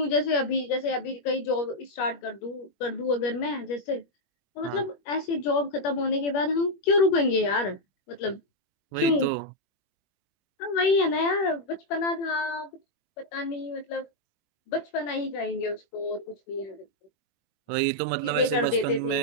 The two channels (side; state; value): right; late; 21 ms